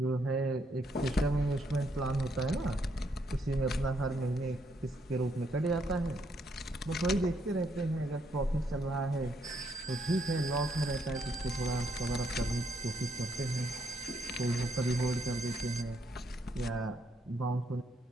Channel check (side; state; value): both; normal; correlation 0.74